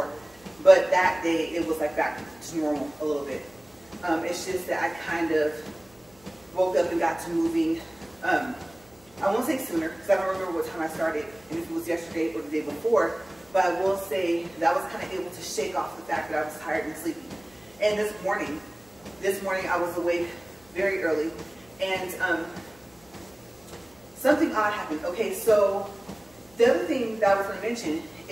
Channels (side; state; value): left; noise; hum, 28 dB below the sound